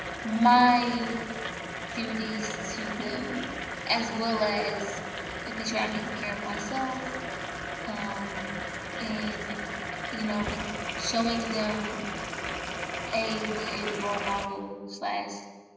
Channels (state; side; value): identical; both; correlation 1.00